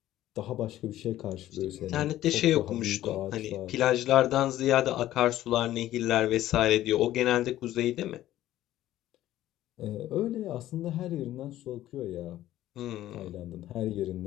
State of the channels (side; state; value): right; quieter; 13.9 dB